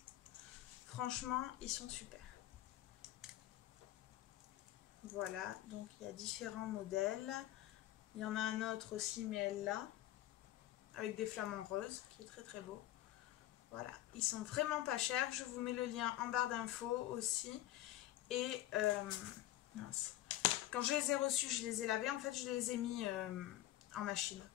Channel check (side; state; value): right; quieter; 14.3 dB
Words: Franchement, ils sont super. Voilà, donc il y a différents modèles. Il y en a un autre aussi, mais elle là, avec des flamants roses, qui est très très beau. Voilà, ils sont vraiment pas chers. Je vous mets le lien en barre d'infos aussi. Et mince. Quand je les ai reçus, je les ai lavés. En fait, je les ai mis en machine,